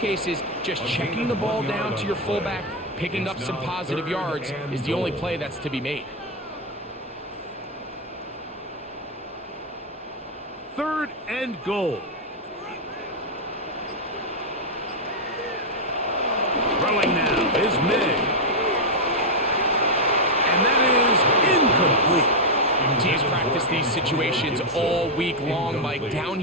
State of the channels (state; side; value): normal; both; correlation 0.00